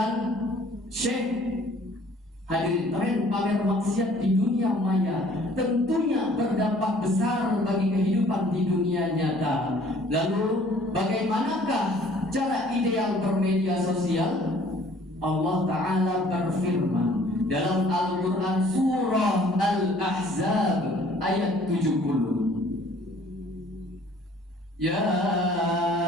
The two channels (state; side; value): normal; both; correlation 0.55